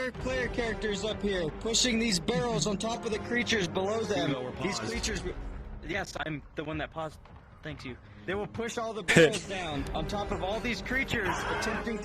player characters up here, pushing these barrels on top of the creatures below them. These creatures. Yes, I'm the one that paused. Thank you. They will push all the barrels down on top of all these creatures attempting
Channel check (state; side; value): identical; both; correlation 1.00